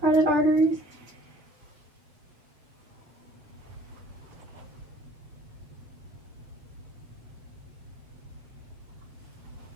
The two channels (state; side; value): late; left; 7.1 ms